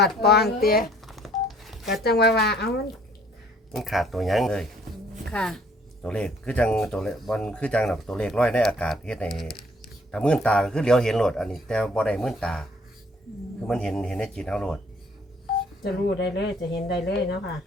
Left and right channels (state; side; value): normal; both; correlation 0.60